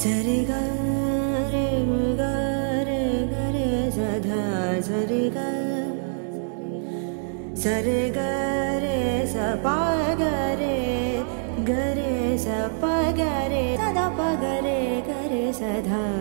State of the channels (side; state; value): left; silent; digital silence